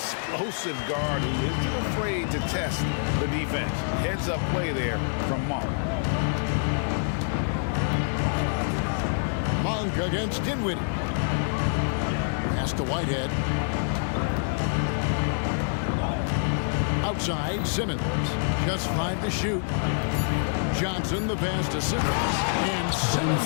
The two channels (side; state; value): right; silent; 56 dB below the other